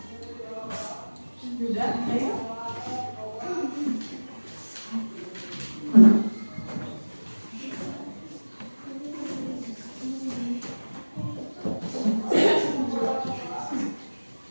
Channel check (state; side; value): inverted; both; correlation -1.00